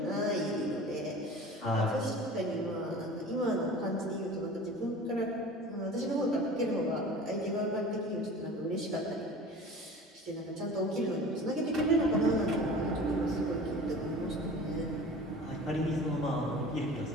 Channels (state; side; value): normal; both; correlation 0.40